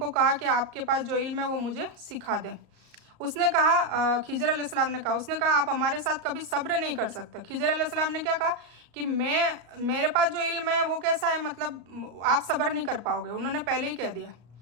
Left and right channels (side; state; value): left; late; 34 ms